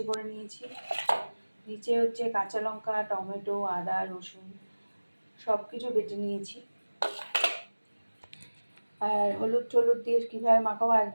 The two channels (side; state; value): both; inverted; correlation -1.00